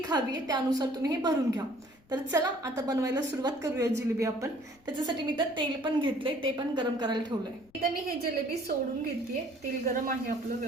हवी आहे त्यानुसार तुम्ही हे भरून घ्या. तर चला आता बनवायला सुरुवात करूया जिलेबी आपण. त्याच्यासाठी मी तर तेल पण घेतले, ते पण गरम करायला ठेवलंय. इथं मी हे जिलेबी सोडून घेते. तेल गरम आहे आपलं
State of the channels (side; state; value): left; noise; rumble, 30 dB below the sound